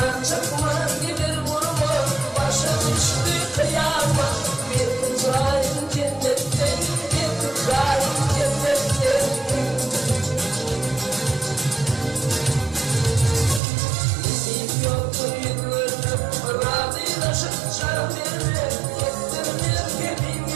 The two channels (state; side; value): drops out; left; at 13.6 s